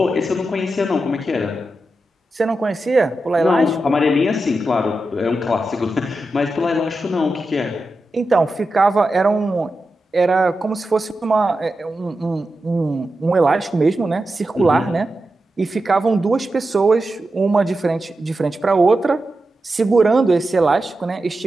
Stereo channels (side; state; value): both; normal; correlation 0.90